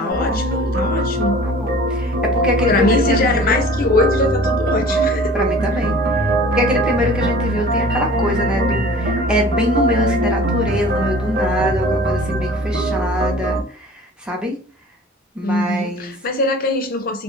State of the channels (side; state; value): both; normal; correlation 0.45